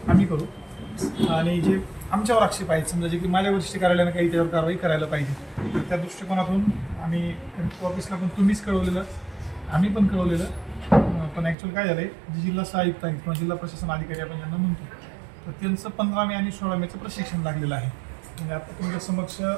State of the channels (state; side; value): drops out; left; at 11.6 s